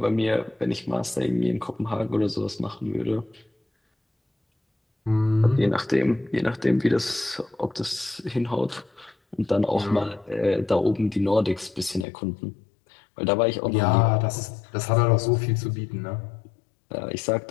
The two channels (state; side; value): drops out; right; at 12.1 s